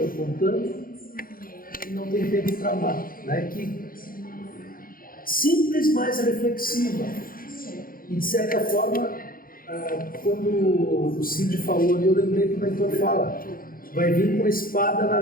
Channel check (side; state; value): right; late; 0.42 ms